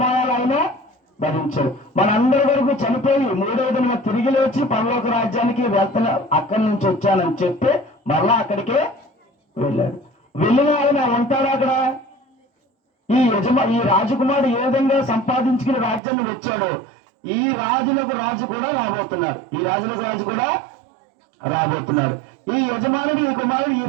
ఆయన భరించాడు. మనందరి వరకు చనిపోయి 3వ దిన తిరిగి లేచి పరలోక రాజ్యానికి వెళ్తున్నా, అక్కడి నుంచి వచ్చానని చెప్పి మరలా అక్కడికే వెళ్ళాడు. వెళ్ళిన ఆయన ఉంటాడు అక్కడ. ఈ రాజకుమారుడు ఏ విధంగా సంపాదించుకుని రాజ్యాన్ని వచ్చాడో ఈ రాజులకు రాజు కూడా రాబోతున్నాడు. ఈ రాజులకు రాజు కూడా రాబోతున్నాడు. ఈ యజమానుడు, ఈ కుమారుడు, ఈ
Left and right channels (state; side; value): drops out; left; at 16.0 s